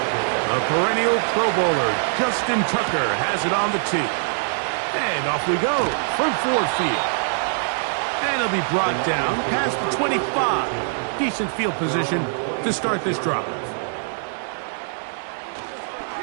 The perennial Pro Bowler Justin Tucker has it on the tee. And off we go from Ford Field. And it'll be brought down past the 25. Decent field position to start this drive.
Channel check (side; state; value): left; silent; digital silence